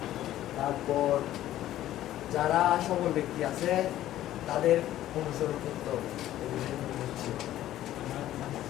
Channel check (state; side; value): quieter; right; 13.4 dB